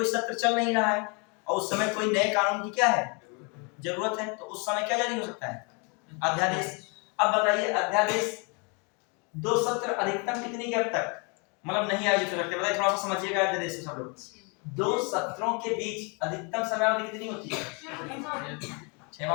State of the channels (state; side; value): quieter; right; 32.3 dB